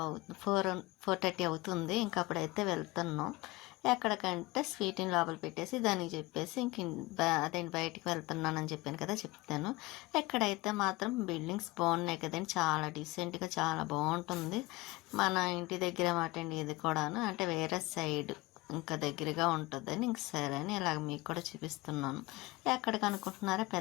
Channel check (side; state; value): right; quieter; 21.4 dB